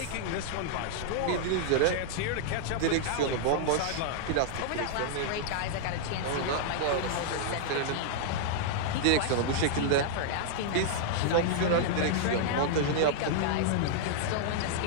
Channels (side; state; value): both; different; correlation -0.01